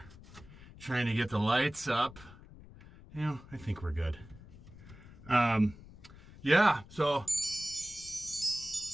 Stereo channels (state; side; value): noise; left; rumble, 19 dB below the sound